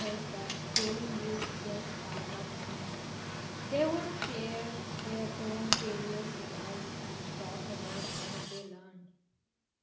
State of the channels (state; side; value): identical; both; correlation 1.00